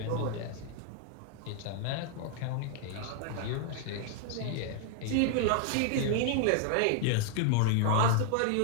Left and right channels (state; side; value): different; both; correlation 0.00